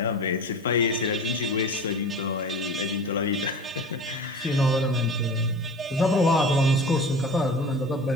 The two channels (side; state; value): both; normal; correlation 0.36